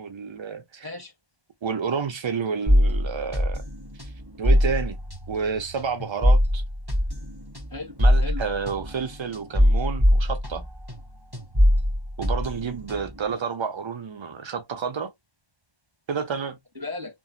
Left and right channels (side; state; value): left; late; 1.3 ms